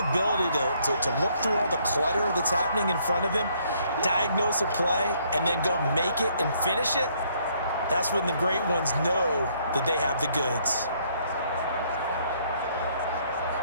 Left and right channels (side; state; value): both; inverted; correlation -0.67